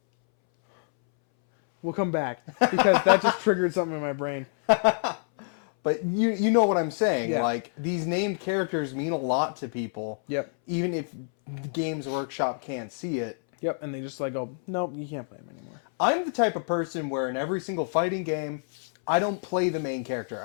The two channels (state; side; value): silent; right; 60 dB below the other